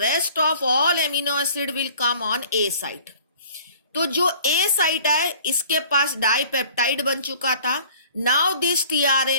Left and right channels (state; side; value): inverted; both; correlation -0.51